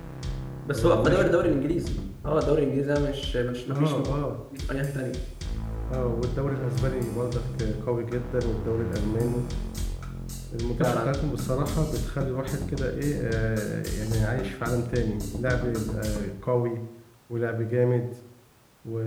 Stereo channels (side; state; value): both; identical; correlation 1.00